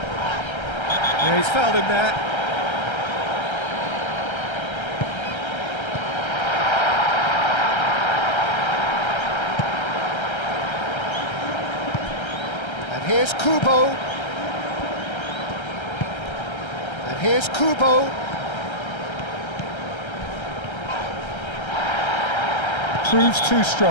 Yeah, he's fouled him there. And here's Kubo. And here's Kubo. Proves too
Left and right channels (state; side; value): late; right; 1.3 ms